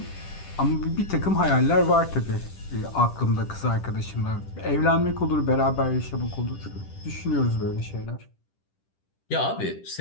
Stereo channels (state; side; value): late; right; 10 ms